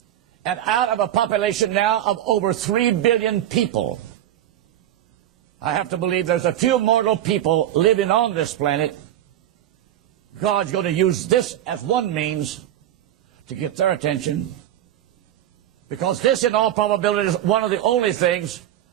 And out of a population now of over 3 billion people, I have to believe there's a few mortal people living on this planet. God's going to use this as one means to get their attention. Because this, in all probability, is one of the only things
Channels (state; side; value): quieter; left; 11.8 dB